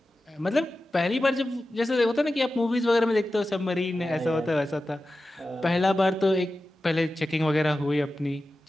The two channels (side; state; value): both; normal; correlation 0.93